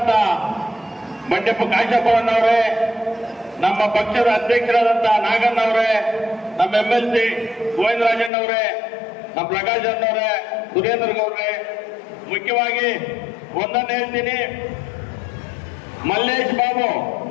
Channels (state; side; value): drops out; right; at 8.3 s